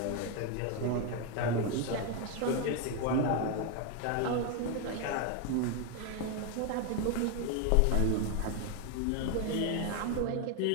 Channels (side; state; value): both; different; correlation 0.01